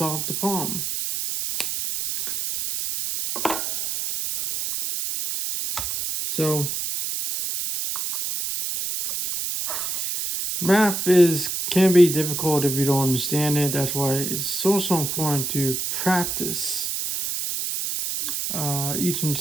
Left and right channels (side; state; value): right; noise; hiss, 3 dB below the sound